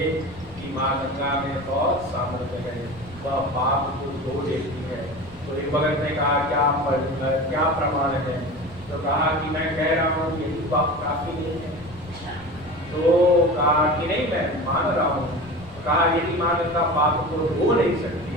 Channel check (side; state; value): left; noise; rumble, 22 dB below the sound